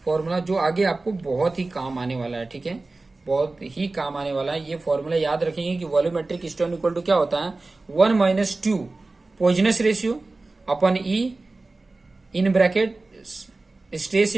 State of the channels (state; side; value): quieter; left; 3.3 dB